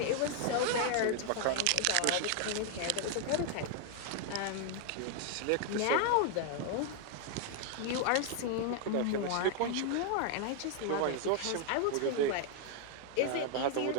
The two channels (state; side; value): different; both; correlation 0.00